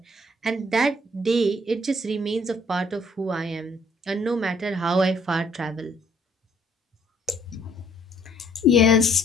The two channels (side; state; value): both; normal; correlation 0.63